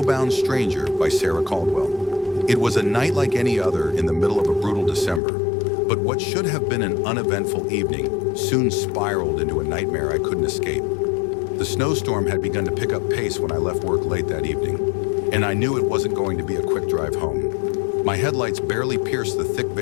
Stranger by Sarah Caldwell. It was a night like any other in the middle of a brutal December, but what should have been an uneventful evening soon spiraled into a nightmare I couldn't escape. The snowstorm had begun to pick up pace when I left work late that evening, and I knew it wasn't going to be a quick drive home. My headlights barely pierced the thick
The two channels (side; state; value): right; drops out; at 5.2 s